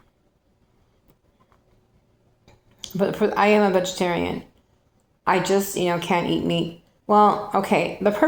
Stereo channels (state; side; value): identical; both; correlation 1.00